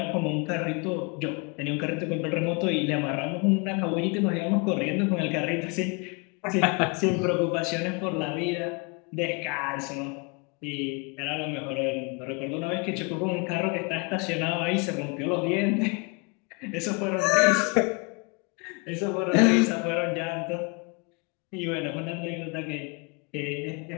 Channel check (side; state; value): right; quieter; 31.0 dB